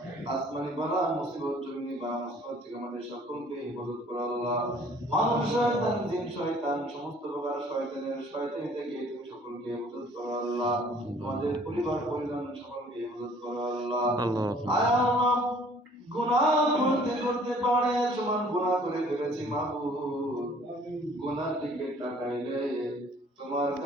আসমানি বালা মুসিবত জমিনি বালা মুসিবত থেকে আমাদের সকলকে হেফাজত করো আল্লাহ। মানব শয়তান জিন শয়তান সমস্ত প্রকার শয়তানি থেকে তুমি সকলকে হেফাজত করো আল্লাহ। আমাদের পরিবার পরিজন সকলকে হেফাজত করো আল্লাহ। আয় আল্লাহ, গুনাহ করতে করতে পারে সমান গুনাহ করে ফেলেছি মাহবুব। গুনার দিকে তাকাইলে তোমার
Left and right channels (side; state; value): both; normal; correlation 0.56